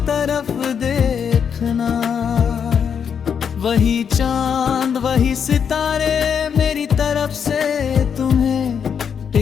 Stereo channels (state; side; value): quieter; right; 7.3 dB